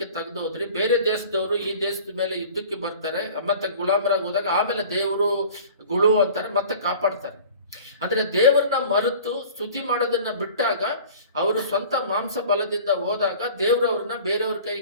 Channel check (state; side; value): inverted; both; correlation -0.44